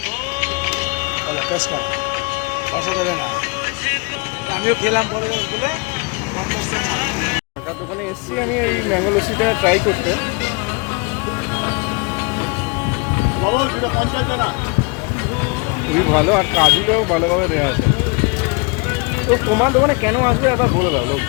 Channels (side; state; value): right; quieter; 30.0 dB